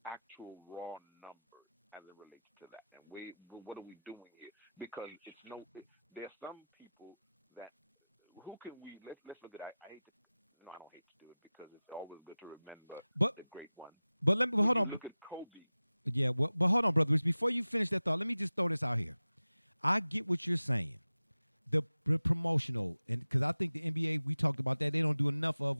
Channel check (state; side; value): inverted; both; correlation -0.97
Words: actual raw numbers as it relates to that. And what are we doing here? Because there are some people that, who can we, let's look at, I don't hate to do it because it's always good to remember the great one. But when you look at Kobe. Yeah, but hold on, brother. Before you finish that thought, let me just throw this out here. I get what you're saying. The promotional, and because I think the NBA, we talked about that, they don't do enough of